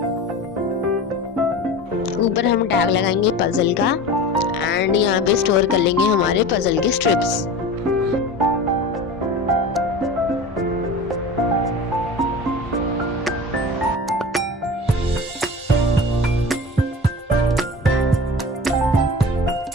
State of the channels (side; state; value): both; normal; correlation 0.34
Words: ऊपर हम टैग लगाएंगे पजल का एंड यहाँ पे स्टोर कर लेंगे हमारे पजल के स्ट्रिप्स।